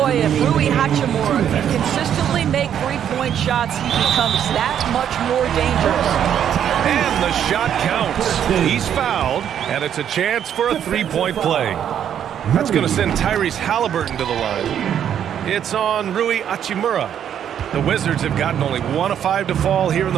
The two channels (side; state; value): left; quieter; 9.4 dB